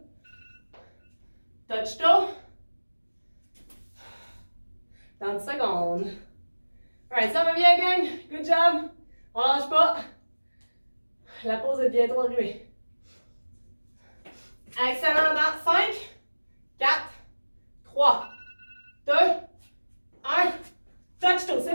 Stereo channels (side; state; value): both; inverted; correlation -1.00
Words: Touch toe. 30 secondes. Alright, ça va bien, gang. Good job. On lâche pas. La pause est bientôt arrivée. Excellent. Dans 5, 4, 3, 2, 1. Touch toe.